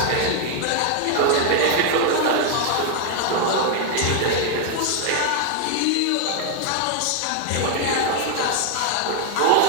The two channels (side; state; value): both; different; correlation 0.00